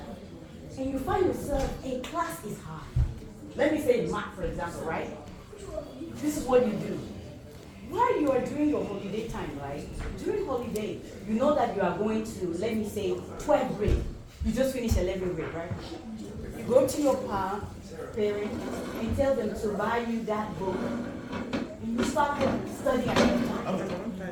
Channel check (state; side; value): identical; both; correlation 1.00